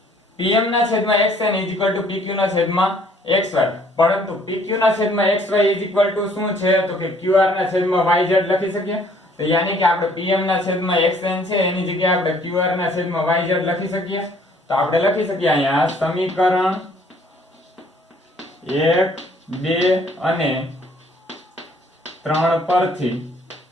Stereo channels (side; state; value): both; normal; correlation 0.60